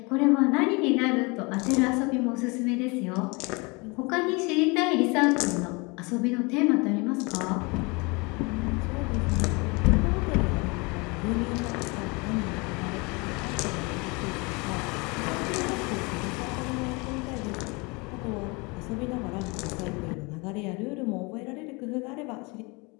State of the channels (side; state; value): right; quieter; 27.9 dB